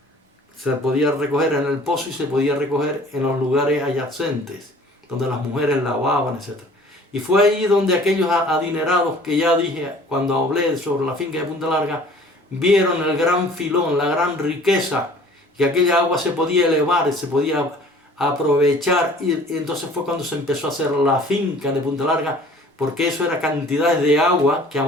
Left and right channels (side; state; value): both; normal; correlation 0.50